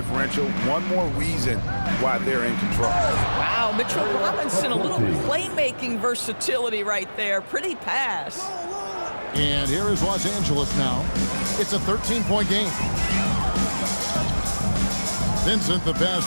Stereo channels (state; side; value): inverted; both; correlation -1.00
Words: One more reason why they're in control. Wow, Mitchell Robinson, a little playmaking versatility right there. Pretty pass. And here is Los Angeles now. It's a 13-point game. Vincent the